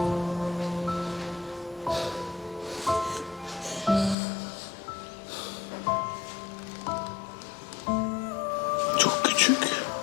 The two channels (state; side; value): drops out; right; at 4.2 s